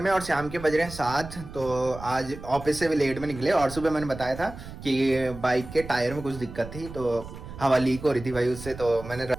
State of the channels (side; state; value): right; noise; rumble, 13 dB below the sound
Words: में, और शाम के बज रहे हैं 7। तो आज ऑफिस से भी लेट में निकले, और सुबह मैंने बताया था कि बाइक के टायर में कुछ दिक्कत थी, तो हवा लीक हो रही थी भाई उससे। तो मैंने